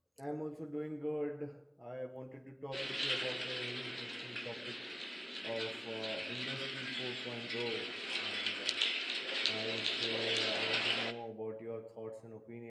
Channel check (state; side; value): identical; both; correlation 1.00